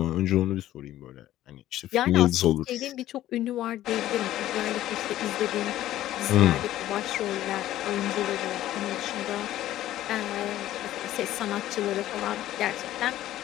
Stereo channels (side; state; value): right; quieter; 13.7 dB